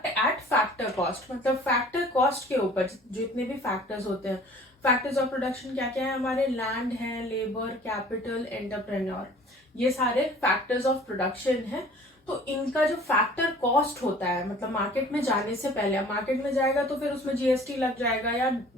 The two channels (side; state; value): both; normal; correlation 0.49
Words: at factor cost, मतलब फैक्टर कॉस्ट के ऊपर जितने भी फैक्टर्स होते हैं. फैक्टर्स ऑफ प्रोडक्शन क्या क्या है हमारे? लैंड है, लेबर, कैपिटल, एंटरप्रेन्योर, ये सारे फैक्टर्स ऑफ प्रोडक्शन है. तो इनका जो फैक्टर कॉस्ट होता है, मतलब मार्केट में जाने से पहले, मार्केट में जाएगा तो फिर उसमें GST लग जाएगा या